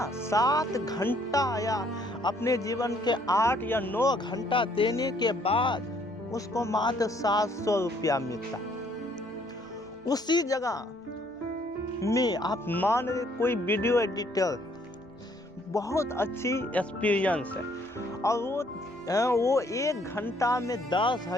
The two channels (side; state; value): both; normal; correlation 0.65